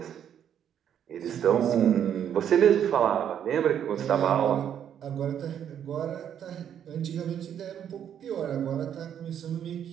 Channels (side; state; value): left; quieter; 9.3 dB